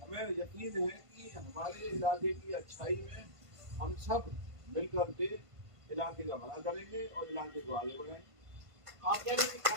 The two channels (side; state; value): left; late; 1.5 ms